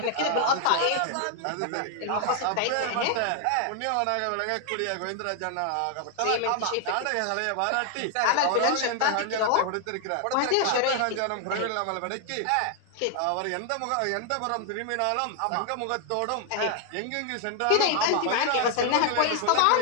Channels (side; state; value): both; different; correlation 0.00